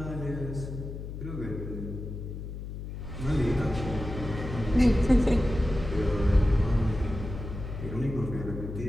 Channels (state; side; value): noise; left; hum, 8 dB below the sound